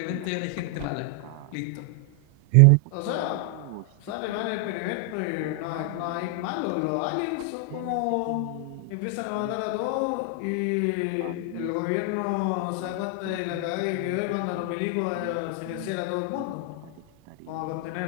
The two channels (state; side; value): different; both; correlation 0.00